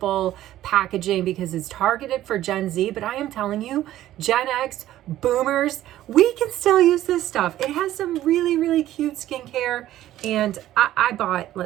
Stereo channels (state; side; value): quieter; left; 13.7 dB